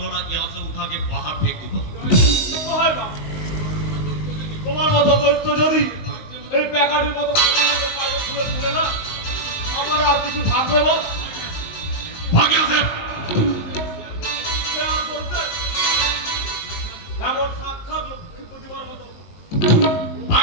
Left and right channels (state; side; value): late; right; 20 ms